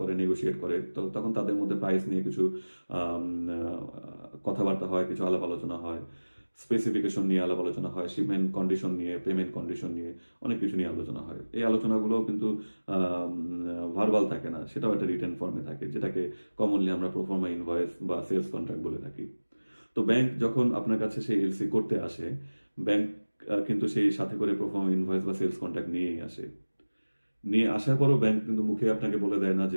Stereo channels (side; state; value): both; inverted; correlation -1.00